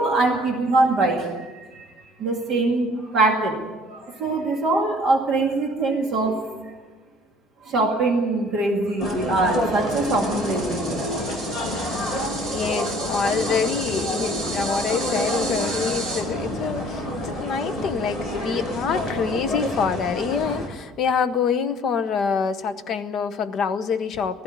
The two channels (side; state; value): both; normal; correlation 0.54